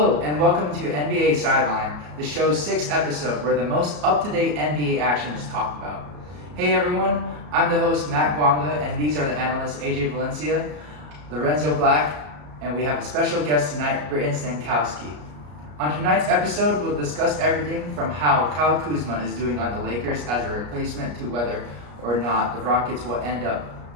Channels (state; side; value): late; left; 34 ms